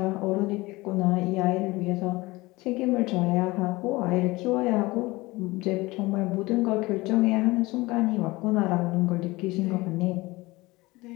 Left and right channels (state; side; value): quieter; right; 21.3 dB